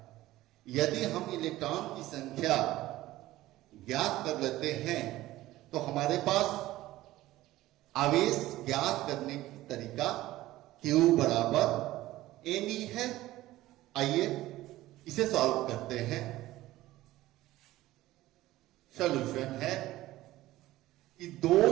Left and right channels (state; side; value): quieter; left; 16.3 dB